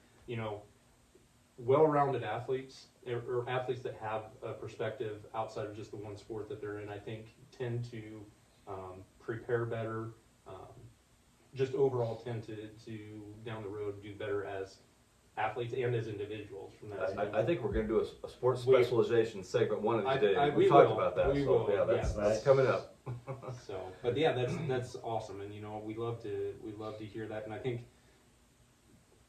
Well-rounded athletes, or athletes that have a perspective outside of just the one sport that they're in, I think tend to prepare better, just overall tend to down the road do better as athletes and as individuals from that standpoint. I think we're going to do a sports We- specialization segment one of these days. we We talked will. about that. We so will, yeah, yes. that's coming up. So, but yeah, that's awesome, and you know, we love to hear that, and I think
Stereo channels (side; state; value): both; identical; correlation 1.00